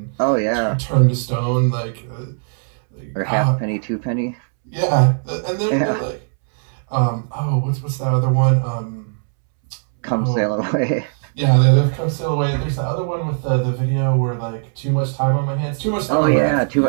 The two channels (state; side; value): silent; left; 66 dB below the other